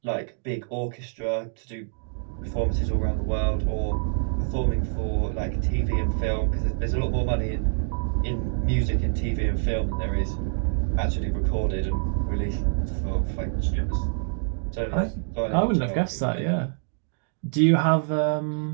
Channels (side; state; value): left; silent; digital silence